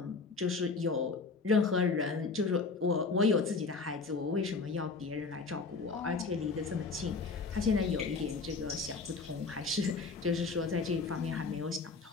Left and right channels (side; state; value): right; quieter; 4.3 dB